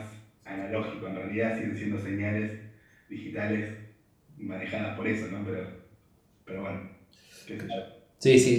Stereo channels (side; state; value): both; identical; correlation 1.00